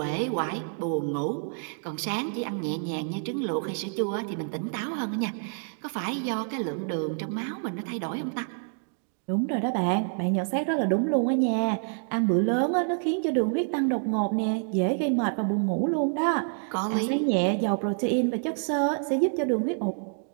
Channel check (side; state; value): left; silent; 60 dB below the other